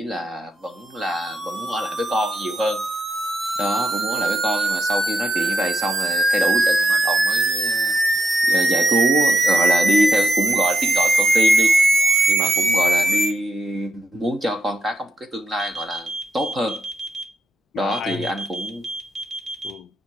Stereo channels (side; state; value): both; normal; correlation 0.83